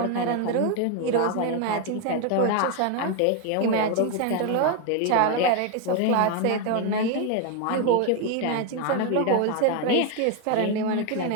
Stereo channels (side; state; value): both; different; correlation 0.01